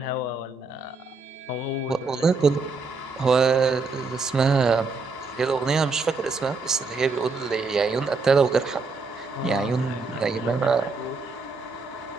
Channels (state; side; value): quieter; left; 4.1 dB